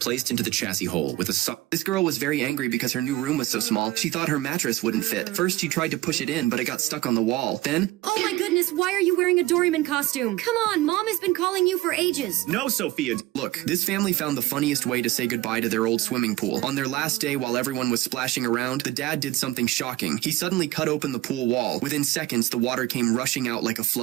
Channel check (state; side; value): quieter; left; 17.5 dB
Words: into the chassis hole with a This girl was very angry because her new room was so small. She thought her mattress wouldn't fit. First, she tried to push it in, but it got stuck on the wall. Then... Oh my goodness, why are you wearing a Doraemon costume? Come on, Mom has been calling you for ages. No, Sophia. Look, this family found the funniest way to say goodbye to their old swimming pool. On their last day, while everyone was splashing around, the dad did something shocking. He suddenly cut open the pool wall. Within seconds, the water came rushing out like a